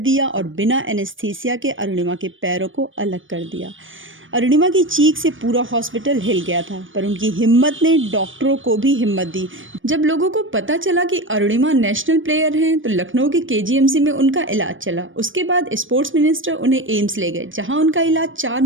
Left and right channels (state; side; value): late; left; 0.57 ms